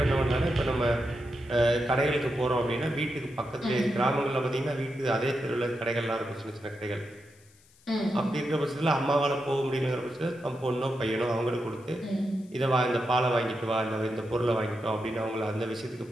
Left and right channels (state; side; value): noise; left; hiss, 29 dB below the sound